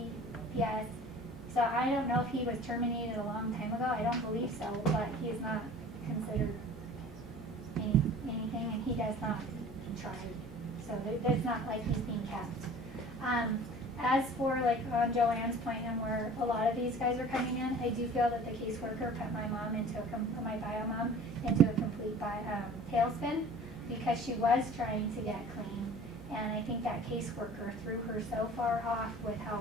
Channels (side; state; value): both; normal; correlation 0.44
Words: So I don't know if he was terminated a long time ago. I don't believe so, but he is not considered anything, and he does not try. So it's not like he's being kept. As for like on Joanne's point and where a lot of these guys are coming in, I do feel that the caseworker put my mom into my bio mom into a complete tailspin because she was trying to get clean. And I think that caseworker threw her so far off with how